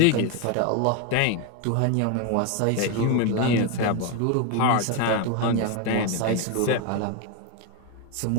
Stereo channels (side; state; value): both; different; correlation 0.02